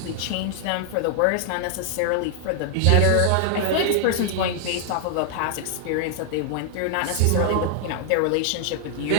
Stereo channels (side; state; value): both; different; correlation 0.00